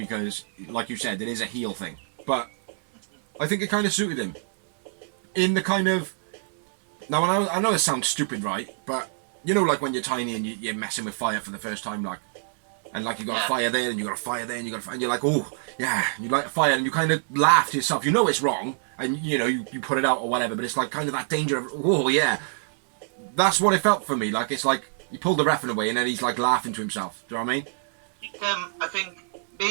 like you said, it is a heel thing. But I think it kind of suited him. In the kind of... Now, I know it sounds stupid, right? But, you know, like when you're tiny and you're messing with fire for the first time, like... And, like, you got a fire there, and you got a fire there, and you got a fire... And you're like, oh, yeah, you light a fire, and you kind of laugh to yourself. You know it's wrong, and, you know, you put it out or whatever, but it's, like, kind of that danger of, oh, yeah. That's what it felt for me. Like, it's like, you pulled the ref away, and then he's, like, laughing to himself. Do you know what I mean? I think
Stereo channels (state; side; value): silent; left; digital silence